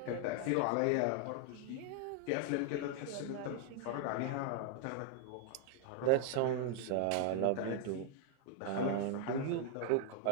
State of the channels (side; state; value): both; different; correlation 0.00